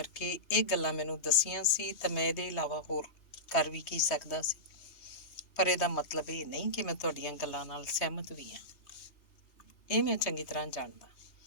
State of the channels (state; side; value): late; right; 3.0 ms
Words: ਇਹ ਗੱਲਾਂ ਮੈਨੂੰ ਦੱਸੀਆਂ ਸੀ ਤਾਂ ਮੈਂ ਇਹਦੇ ਇਲਾਵਾ ਹੋਰ ਕਰ ਵੀ ਕੀ ਸਕਦਾ ਸੀ, ਪਰ ਇਹਦਾ ਮਤਲਬ ਇਹ ਨਹੀਂ ਕਿ ਮੈਂ ਤੁਹਾਡੀਆਂ ਗੱਲਾਂ ਨਾਲ ਸਹਿਮਤ ਵੀ ਹਾਂ। ਇਹ ਮੈਂ ਚੰਗੀ ਤਰ੍ਹਾਂ ਜਾਣਦਾ,